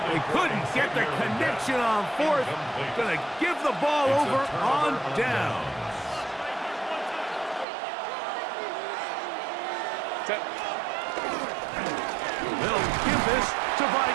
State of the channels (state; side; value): drops out; left; at 7.7 s